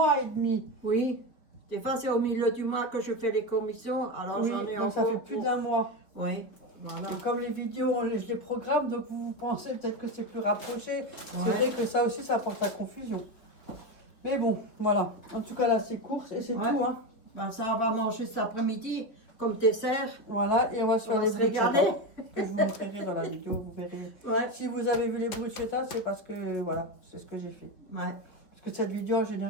et demi. Oui. Des fois, c'est au milieu du mois que je fais les commissions. Alors, Oui, j'en ai donc encore ça fait plus d'un mois. Oui, voilà. Et comme les vidéos, je les programme, donc vous pensez peut-être que c'est plus rapproché. C'est Ouais. vrai que ça aussi, ça apporte la confusion. Mais bon, voilà. En tout cas, là, c'est courses et c'est Ouais. tout. Hein. Ben, ça, on va manger cet après-midi comme dessert. Voilà, et on va se On faire va les se régaler. bruschetta. Que je vous montrerai dans la vidéo, vous verrez. Ouais. Si vous avez vu les bruschetta, c'est parce que, voilà, c'est ce que j'ai fait. Ouais. Parce que cette vidéo, en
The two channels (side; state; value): right; late; 4.2 ms